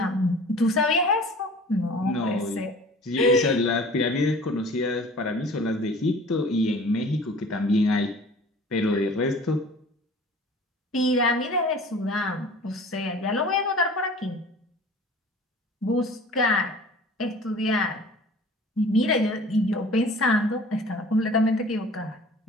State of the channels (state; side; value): normal; both; correlation 0.45